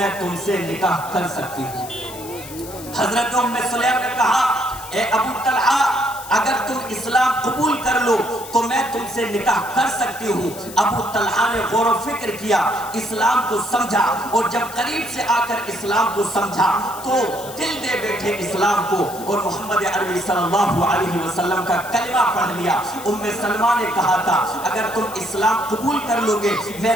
تم سے نکاح کر سکتی ہوں. حضرت ام سلیم نے کہا اے ابو طلحہ اگر تم اسلام قبول کر لو تو میں تم سے نکاح کر سکتی ہوں. ابو طلحہ نے غور و فکر کیا، اسلام کو سمجھا اور جب قریب سے آ کر اسلام کو سمجھا تو دل دے بیٹھے اسلام کو اور محمد عربی صلی اللہ علیہ وسلم کا کلمہ پڑھ لیا. ام سلمہ نے کہا تھا اگر تم اسلام قبول کر لو گے میں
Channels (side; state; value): left; noise; hiss, 14 dB below the sound